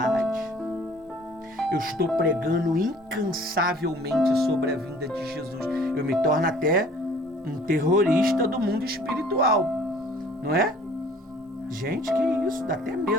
Eu estou pregando incansavelmente sobre a vinda de Jesus. Eu me torno até um terrorista do mundo espiritual, não é? Gente, que isso, dá até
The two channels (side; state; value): both; normal; correlation 0.53